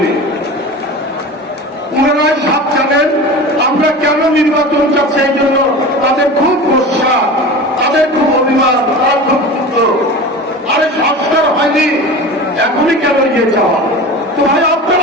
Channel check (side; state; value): both; normal; correlation 0.33